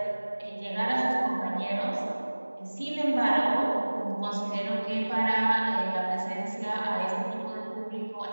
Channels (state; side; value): inverted; both; correlation -1.00